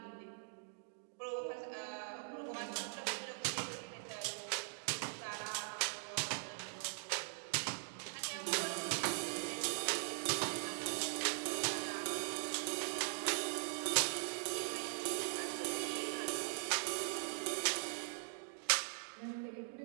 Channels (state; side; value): silent; left; digital silence